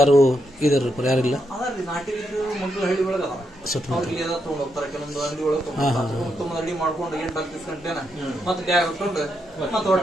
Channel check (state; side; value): normal; both; correlation 0.81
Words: ಇದಾರ ಯಾರಿಲ್ಲ? ಅದರಲ್ಲಿ ನಾಟಿ ಮಕ್ಕಳು ಹಳ್ಳಿ ಒಳಗೆ ಅದ, ಅವ್ರಿಗೆ ಎಲ್ಲ ತಗೊಂಡು ಹೋಗ್ತಾರೆ. ಕೆಲವೊಂದು ಅಂಗಡಿ ಒಳಗೆ ತುಂಬ ರೆಡಿ ಮಾಡ್ಕೊಂಡು 8-10 ಗಂಟೆನ ಮತ್ತೆ ಬ್ಯಾಗ್ ಹಾಕೊಂಡು ಮತ್ತೆ